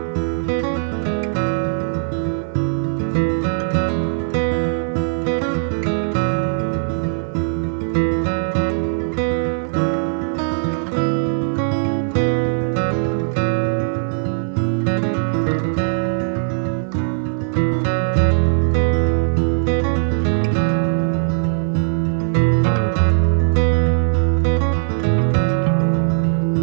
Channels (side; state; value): left; silent; 66 dB below the other